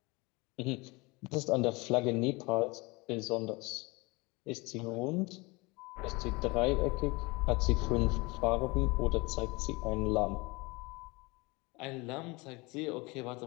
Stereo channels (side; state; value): right; quieter; 25.3 dB